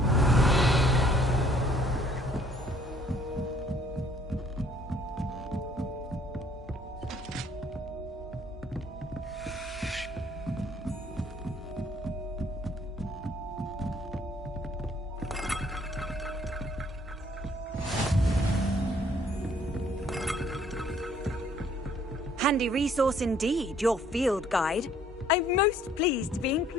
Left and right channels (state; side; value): normal; both; correlation 0.61